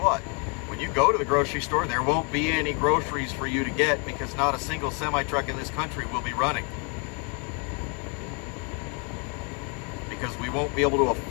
When you go to the grocery store, there won't be any groceries for you to get because not a single semi-truck in this country will be running. Because we won't be able to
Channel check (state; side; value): quieter; right; 35.7 dB